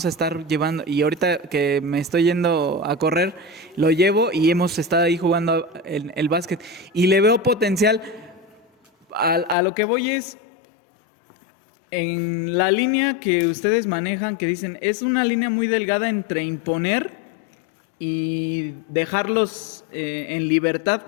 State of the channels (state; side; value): drops out; right; at 9.6 s